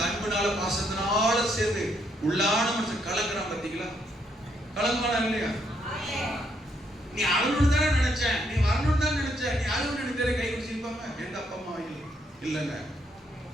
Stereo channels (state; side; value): normal; both; correlation 0.74